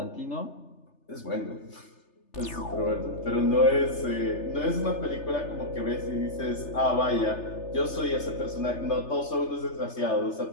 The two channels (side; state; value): right; late; 3.3 ms